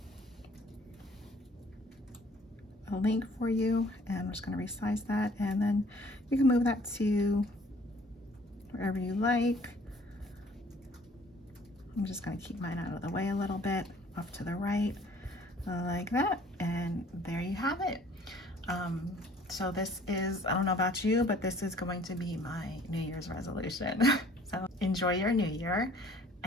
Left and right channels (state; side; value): normal; both; correlation 0.55